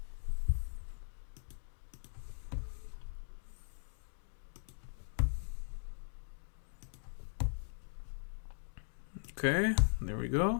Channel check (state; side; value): silent; right; digital silence